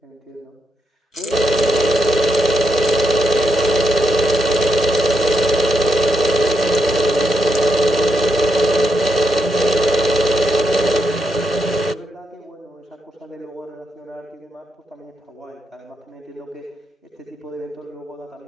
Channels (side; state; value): both; normal; correlation 0.80